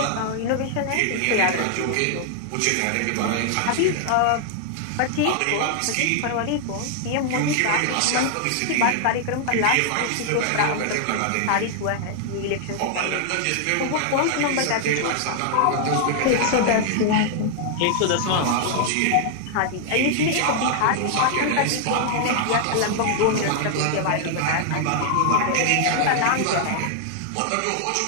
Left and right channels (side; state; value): both; different; correlation 0.00